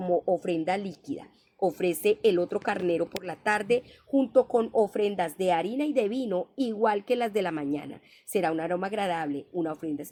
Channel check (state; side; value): identical; both; correlation 1.00